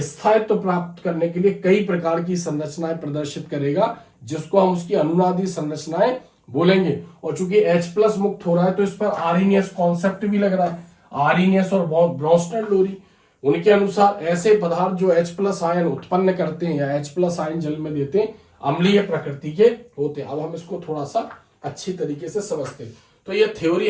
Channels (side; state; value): both; identical; correlation 1.00